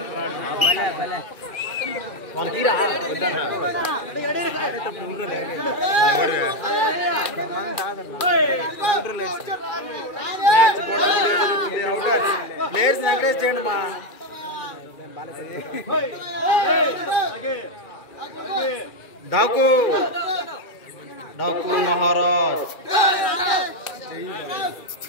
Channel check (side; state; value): right; late; 2.4 ms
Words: ప్లేయర్స్ ఎంకరేజ్ చేయండి మా డాకు మహారాజ్.